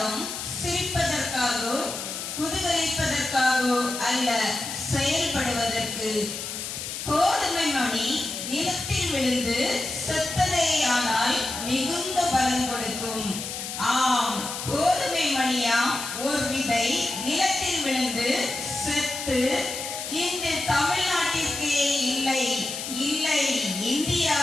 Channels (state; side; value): noise; left; hiss, 6 dB below the sound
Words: சிரிப்பதற்காகவோ குதூகலிப்பதற்காகவோ அல்ல, செயல்படுவதற்கு. கோதுமை மணி நிலத்தில் விழுந்து செத்ததேயானால் மிகுந்த பலன் கொடுக்கும். ஆம், கோதுமை மணியாம் ஒரு விதை நிலத்தில் விழுந்து செத்து இந்த தமிழ்நாட்டிற்கே இல்லை இல்லை